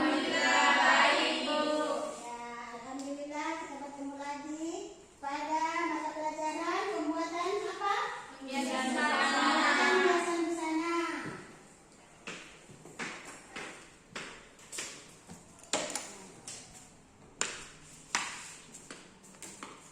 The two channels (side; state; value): both; identical; correlation 1.00